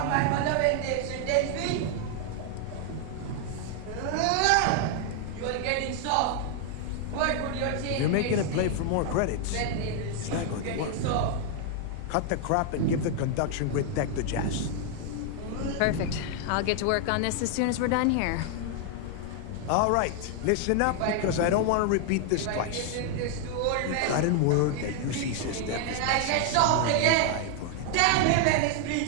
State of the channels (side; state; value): both; different; correlation 0.00